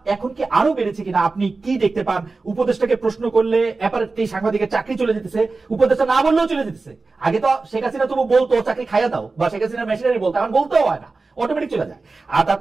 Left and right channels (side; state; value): left; quieter; 3.8 dB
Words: এখন কি আরো বেড়েছে কিনা আপনি কি দেখতে পান? উপদেষ্টাকে প্রশ্ন করলে অ্যাপারেন্টলি সাংবাদিকের চাকরি চলে যেতেছে, উপদেষ্টা না বললেও চলে যেতেছে। আগে তো শেখ হাসিনা তবু বলতো চাকরি খাইয়া দাও, বা শেখ হাসিনা মেশিনারি বলতো, এখন বলতেও হয় না, অটোমেটিক চলে যায়। আর